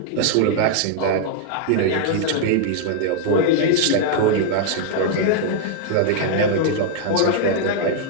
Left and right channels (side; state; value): both; different; correlation -0.01